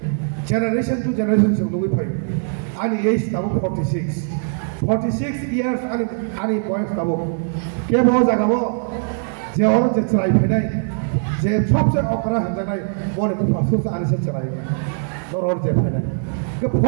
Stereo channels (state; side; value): silent; left; digital silence